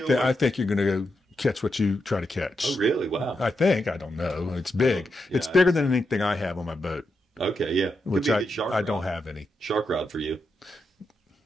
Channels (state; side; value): normal; both; correlation 0.85